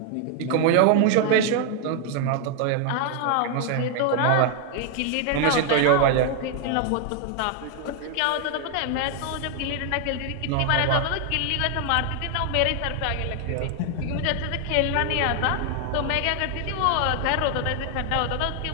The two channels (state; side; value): different; both; correlation 0.00